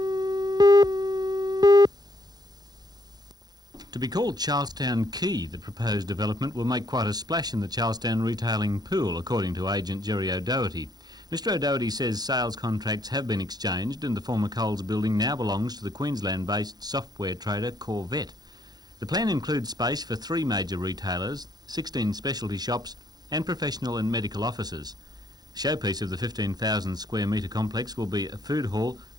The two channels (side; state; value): left; late; 0.19 ms